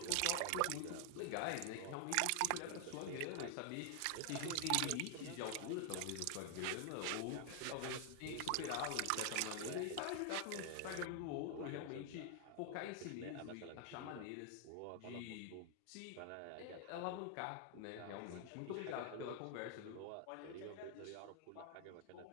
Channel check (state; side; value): different; both; correlation 0.00